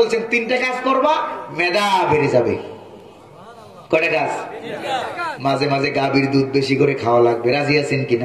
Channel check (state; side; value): identical; both; correlation 1.00